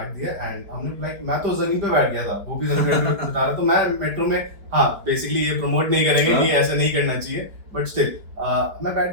दिया एंड हमने लाइक, मैं तो जमीन पे बैठ गया था, वो भी जमीन पे बता रहा, तो मैं मेट्रो में, हाँ बेसिकली ये प्रमोट नहीं करेंगे कि ऐसा नहीं करना चाहिए, बट स्टिल मैं बैठ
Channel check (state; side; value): late; left; 4.9 ms